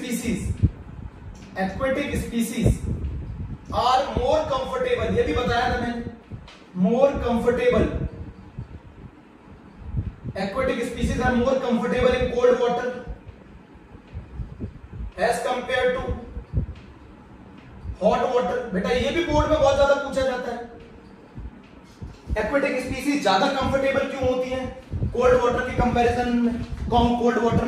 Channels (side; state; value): both; identical; correlation 1.00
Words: species are more comfortable, ये भी बताया था मैंने, more comfortable, aquatic species are more comfortable in cold water as compared to hot water। बेटा ये भी बोर्ड में बहुत ज्यादा पूछा जाता है, एक्वेटिक स्पीसीज ज्यादा कंफर्टेबल क्यों होती हैं कोल्ड वाटर के कंपैरिजन में, कोल्ड वाटर